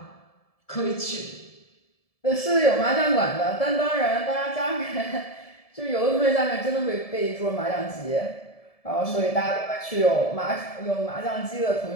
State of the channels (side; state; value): right; late; 1.7 ms